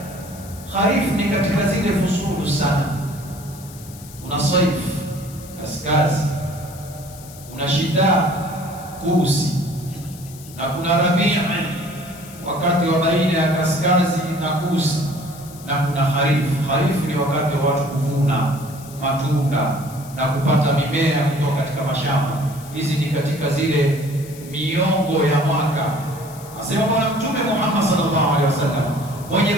Kharif ni katika zile fusulu sana. Kuna saif kaskazi, kuna shida kusi, na kuna rabii wakati wa baina ya kaskazi na kusi, na kuna kharif. Kharif ni wakati wa watu kuvuna matunda na kupata mimea kutoka katika mashamba. Hizi ni katika zile miongo ya mwaka. Asema Bwana Mtume Muhammad sallallahu alaihi wasallam, mwenye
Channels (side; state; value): left; noise; hiss, 19 dB below the sound